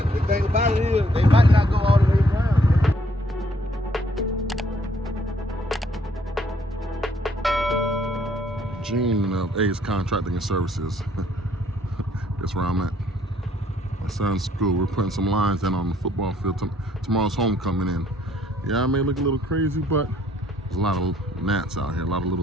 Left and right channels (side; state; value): both; normal; correlation 0.66